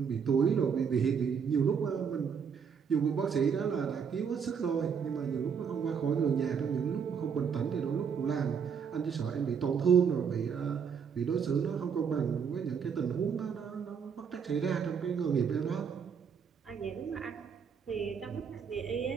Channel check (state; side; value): quieter; left; 6.7 dB